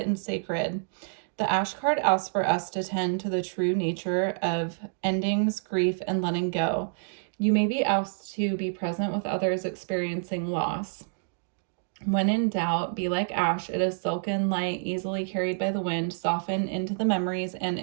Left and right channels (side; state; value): left; silent; digital silence